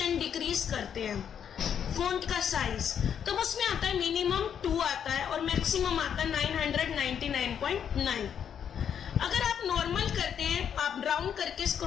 डिक्रीज करते हैं फॉन्ट का साइज, तो उसमें आता है मिनिमम 2 आता है और मैक्सिमम आता है 999.9। अगर आप नॉर्मल करते हैं, आप राउंड करके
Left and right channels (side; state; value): right; quieter; 8.3 dB